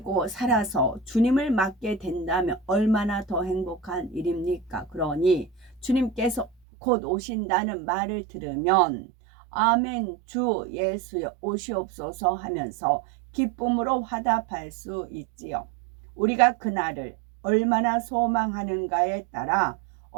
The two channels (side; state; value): left; drops out; at 6.5 s